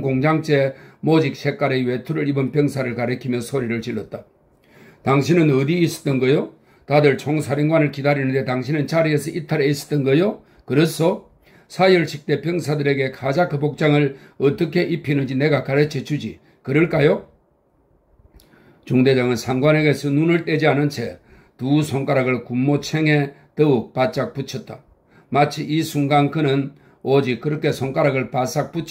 공장제 모직 색깔의 외투를 입은 병사를 가리키며 소리를 질렀다. 당신은 어디 있었던 거요? 다들 총사령관을 기다리는데 당신은 자리에서 이탈해 있었던 거요? 그렇소? 사열식대 병사들에게 카자크 복장을 어떻게 입히는지 내가 가르쳐 주지. 그럴까요? 중대장은 상관에게서 눈을 떼지 않은 채 두 손가락을 군모챙에 더욱 바짝 붙였다. 마치 이 순간 그는 오직 그렇게 손가락을 바싹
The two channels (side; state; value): both; identical; correlation 1.00